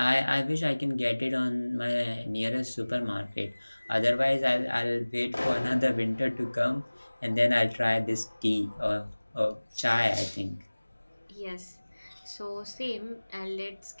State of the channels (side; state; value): both; inverted; correlation -1.00